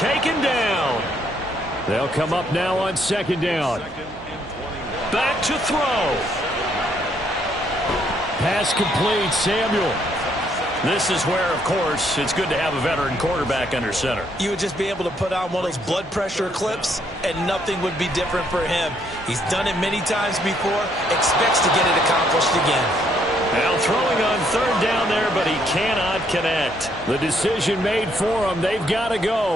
down. They'll come up now on second down. Back to throw. Pass complete, Samuel. This is where, of course, it's good to have a veteran quarterback under center. You would just be able to put on one of those blood pressure clips, and nothing would be different for him. He's done it many times before, expects to get it accomplished again. Now throwing on third down there, but he cannot connect. The decision made for him. They've got to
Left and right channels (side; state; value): both; normal; correlation 0.70